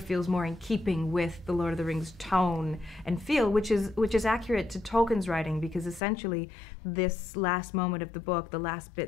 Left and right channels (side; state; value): right; drops out; at 6.0 s